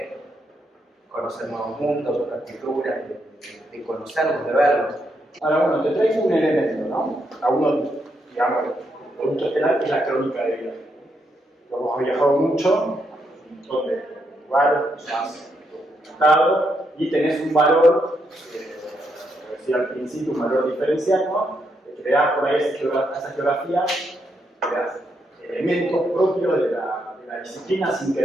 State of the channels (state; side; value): normal; both; correlation 0.79